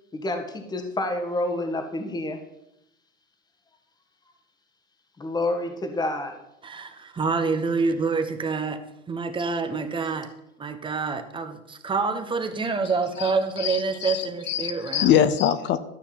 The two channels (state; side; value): normal; both; correlation 0.38